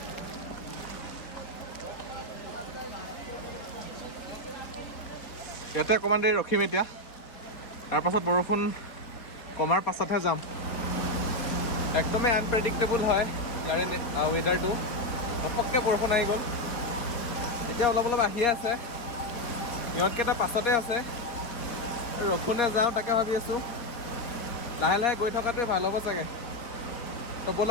ইয়াতে অকণমান দেৰি ৰখিম এতিয়া, তাৰপাছত বৰষুণ কমাৰ পাছতহে যাম। একদমেই আনপ্ৰেডিক্টেবল হয় ইয়াৰে ৱেডাৰটো। ঘপককৈ বৰষুণ আহি গ'ল, এতিয়া অলপ অলপ আহিয়ে আছে। ইহঁতকেইটা পাছতে আছে, ৰখোনে যাওঁ তাকে ভাবি আছোঁ। লাহে লাহে গৈ থকাটোৱে ভাল হ'ব চাগে। তো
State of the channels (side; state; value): right; late; 4.2 ms